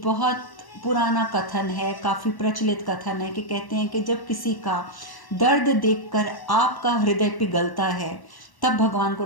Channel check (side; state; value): right; late; 1.1 ms